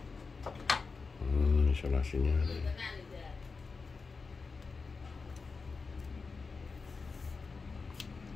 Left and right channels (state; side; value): quieter; right; 4.5 dB